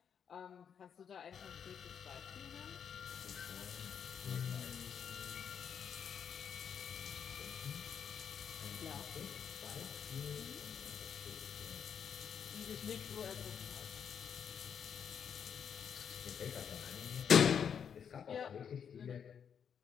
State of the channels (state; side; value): quieter; right; 7.7 dB